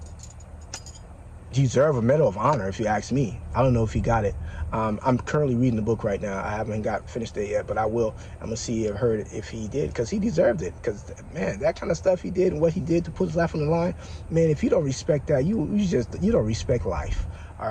deserve a Medal of Honor, if you ask me. I don't know if he got it. I'm currently reading the book right now. I haven't finished it yet, but I will. I'm gonna see if he did, because he deserved it. Because man, that kind of stuff he did and what he did to put his life on the line, man, if you don't respect that, you don't respect life. All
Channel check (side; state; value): both; identical; correlation 1.00